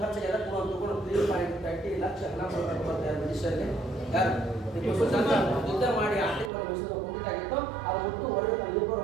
ಖರ್ಚು ಎಲ್ಲ ತಗೊಂಡು 3.30 ಲಕ್ಷ ಹಣ ಕೊಡ್ತಾರೆ ಬ್ರಿಟಿಷರಿಗೆ. ಯಾರು? ಟಿಪ್ಪು ಸುಲ್ತಾನ ಯುದ್ಧ ಮಾಡಿ ಆರ್ಥಿಕವಾಗಿ ಮೈಸೂರು ಕುಂಠಿತಾಗಿತ್ತು. ಅದು ಮುಟ್ಟು ಹೊರಗೆ ತನ್ನ 2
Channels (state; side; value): drops out; left; at 6.5 s